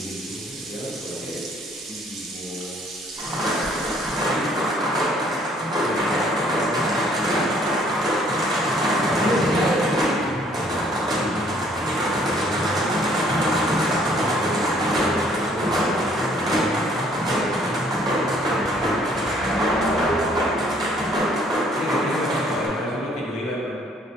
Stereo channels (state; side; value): normal; both; correlation 0.61